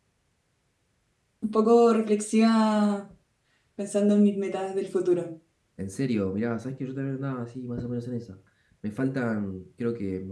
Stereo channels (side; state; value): both; identical; correlation 1.00